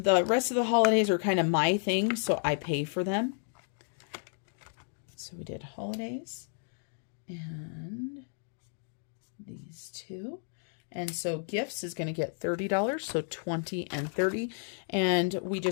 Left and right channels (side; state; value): right; silent; 56 dB below the other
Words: rest of the holidays are kind of my thing, so I pay for them. So we did holidays and these two. And so gifts is going to get $30, so 20 and 30. And we